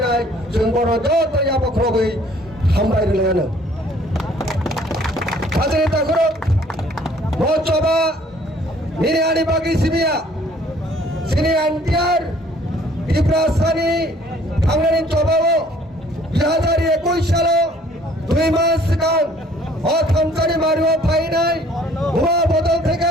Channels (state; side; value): normal; both; correlation 0.57